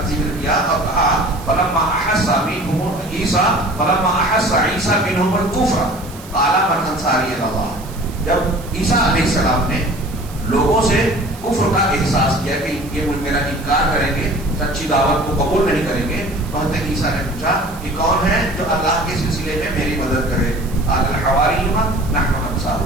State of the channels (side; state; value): right; noise; hiss, 19 dB below the sound